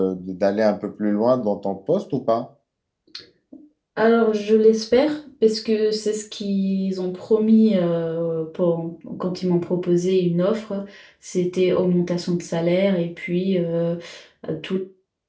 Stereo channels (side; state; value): both; identical; correlation 1.00